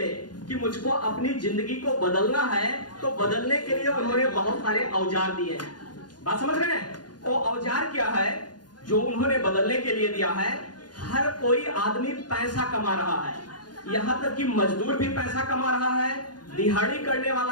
कि मुझको अपनी जिंदगी को बदलना है तो बदलने के लिए उन्होंने बहुत सारे औजार दिए हैं। बात समझ रहे हैं? वो औजार क्या है जो उन्होंने बदलने के लिए दिया है? हर कोई आदमी पैसा कमा रहा है, यहां तक कि मजदूर भी पैसा कमा रहा है, दिहाड़ी करने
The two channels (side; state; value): right; late; 0.70 ms